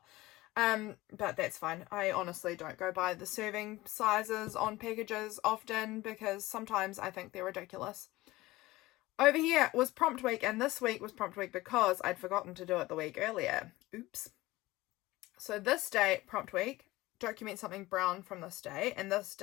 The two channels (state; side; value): quieter; right; 19.0 dB